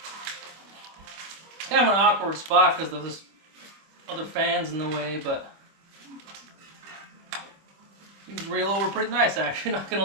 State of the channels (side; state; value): left; late; 26 ms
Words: It's kind of an awkward spot because there's other fans in the way, but you can reel over pretty nice actually, not gonna